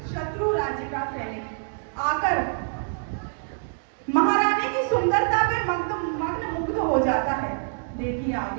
शत्रु राज्य का सैनिक आकर महारानी की सुंदरता पे मग्न मुग्ध हो जाता है। देखिए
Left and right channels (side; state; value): left; silent; digital silence